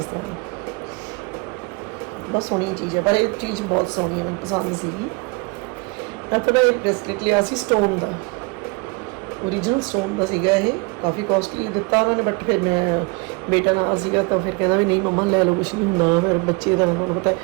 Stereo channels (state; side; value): quieter; left; 29.4 dB